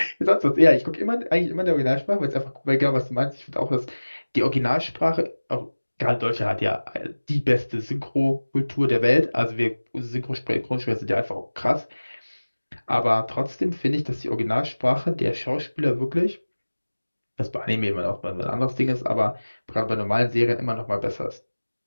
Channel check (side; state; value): both; inverted; correlation -1.00